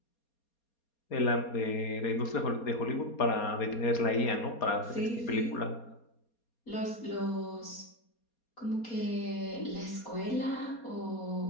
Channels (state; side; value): late; right; 4.2 ms